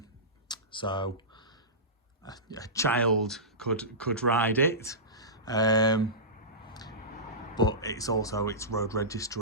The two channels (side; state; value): both; normal; correlation -0.19